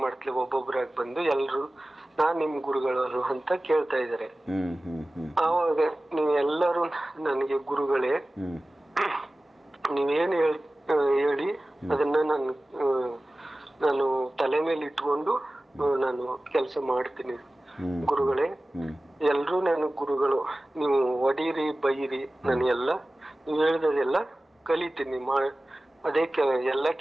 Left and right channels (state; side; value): normal; both; correlation 0.97